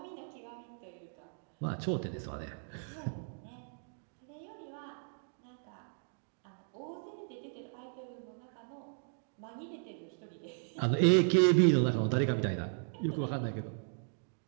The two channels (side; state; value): left; silent; digital silence